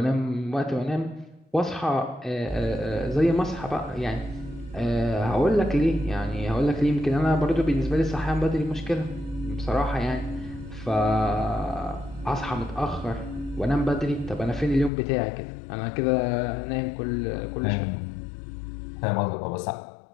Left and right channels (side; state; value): right; drops out; at 14.9 s